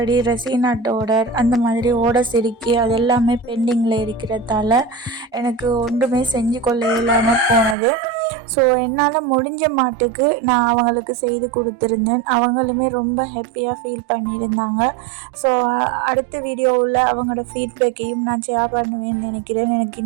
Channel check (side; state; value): left; drops out; at 7.8 s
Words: ரெசினாட் ஆர்டர் அந்த மாதிரி ஆர்டர்ஸ் இருக்கி அது எல்லாமே பெண்டிங்கில் இருக்கிறதால எனக்கு ஒன்றுமே செஞ்சு கொள்ள இல்லாமல் போனது. ஸோ என்னால் முடிஞ்ச மாட்டுக்கு நான் அவங்களுக்கு செய்து கொடுத்துருந்தேன். அவங்களுமே ரொம்ப ஹாப்பியாக ஃபீல் பண்ணியிருந்தாங்க. ஸோ அடுத்த வீடியோவில் அவங்களோட ஃபீட்பேக்கையும் நான் ஷேர் பண்ணுவேன்னு நினைக்கிறேன். எனக்கு